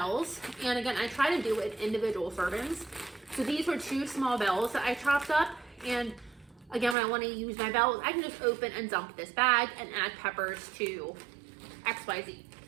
and again, I try to do it in individual servings. So these were 2 small bells that I chopped up, and again, when I want to use my bells, I can just open and dump this bag and add peppers to XYZ.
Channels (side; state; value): left; drops out; at 7.0 s